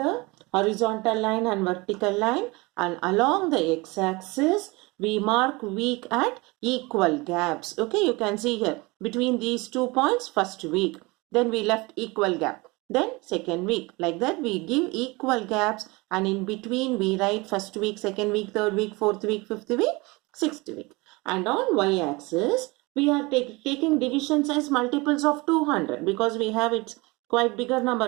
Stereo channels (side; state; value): left; quieter; 24.6 dB